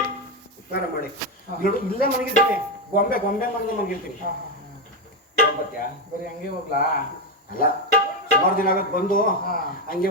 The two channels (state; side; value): normal; both; correlation 0.09